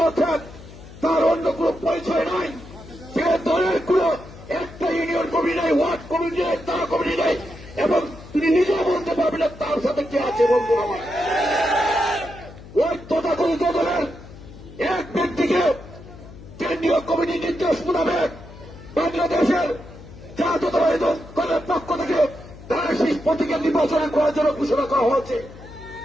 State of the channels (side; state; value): left; noise; hum, 17 dB below the sound